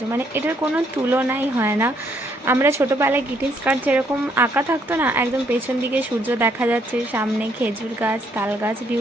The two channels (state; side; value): normal; both; correlation 0.70